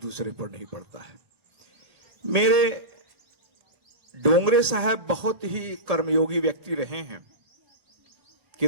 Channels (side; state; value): left; late; 1.8 ms